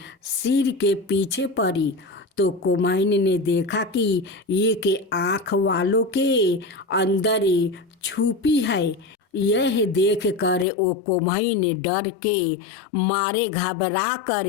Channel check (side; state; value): right; drops out; at 10.7 s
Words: सिर के पीछे पड़ी तो कुम्हाइन ने देखा कि एक आँख वालों के अंदर छुपी है। यह देख कर वो कुम्हाइन डर के मारे घबरा